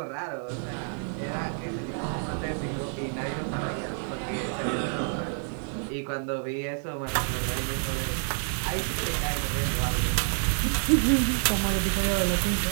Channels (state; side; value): silent; left; 59 dB below the other